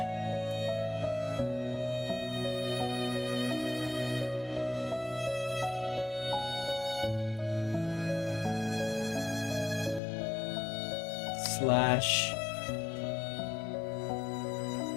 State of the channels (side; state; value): right; drops out; at 10.0 s